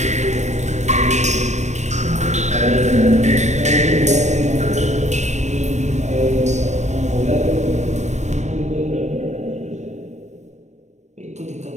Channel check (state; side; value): late; left; 0.34 ms